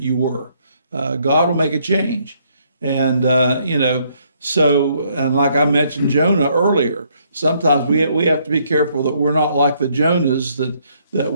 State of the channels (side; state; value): both; inverted; correlation -0.69